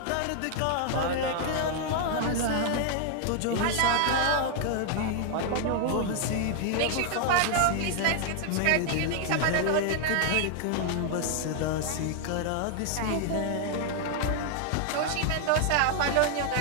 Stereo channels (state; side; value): different; both; correlation 0.00